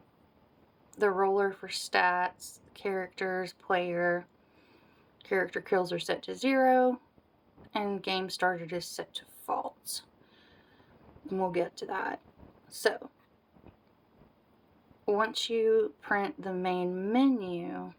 the roller for stats, characters, player, character kills are set to 0, and game started is set to false. And we'll get to that. So, once you print the main menu,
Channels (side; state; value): both; identical; correlation 1.00